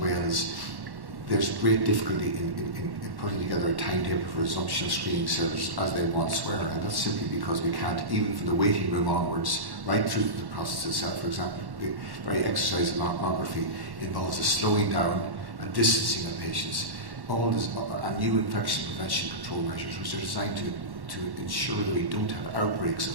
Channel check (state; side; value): late; left; 1.1 ms